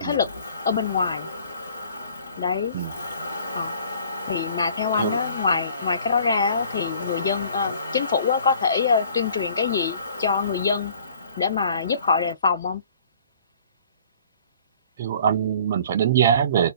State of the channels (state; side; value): inverted; both; correlation -0.52